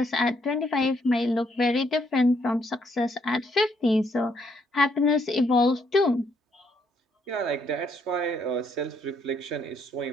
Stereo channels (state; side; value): normal; both; correlation 0.72